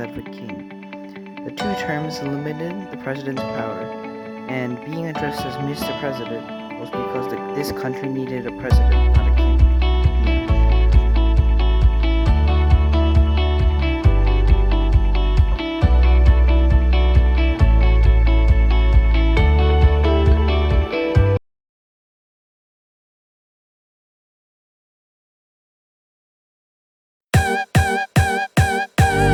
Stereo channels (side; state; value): both; identical; correlation 1.00